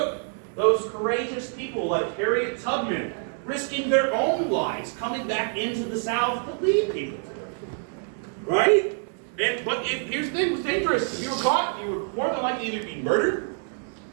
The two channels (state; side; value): silent; left; 57 dB below the other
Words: those courageous people like Harriet Tubman risking their own lives coming back into the South to lead people. Right? But here's the thing, it was dangerous. If you were caught, you were more than likely either be murdered